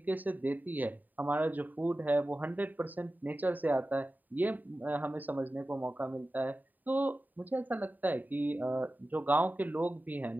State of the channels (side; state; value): left; late; 0.086 ms